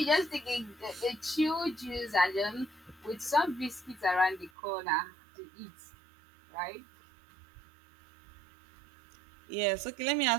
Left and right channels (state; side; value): drops out; left; at 4.5 s